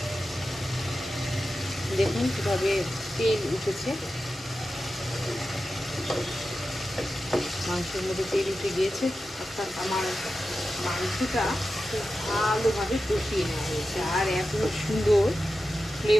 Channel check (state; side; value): normal; both; correlation 0.92